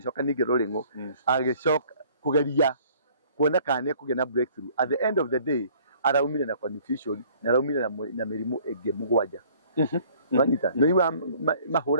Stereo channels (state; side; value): inverted; both; correlation -0.56